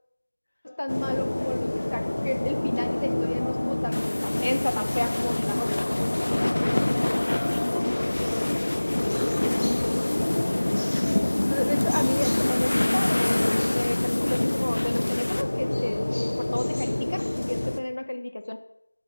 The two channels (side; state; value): both; inverted; correlation -1.00